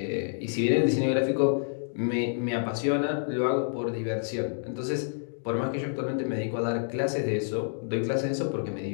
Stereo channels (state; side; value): silent; right; digital silence